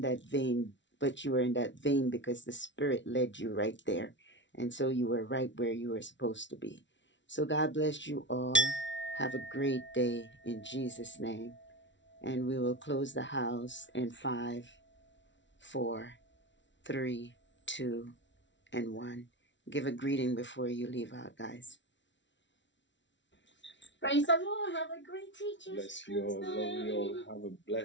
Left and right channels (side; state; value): right; late; 0.54 ms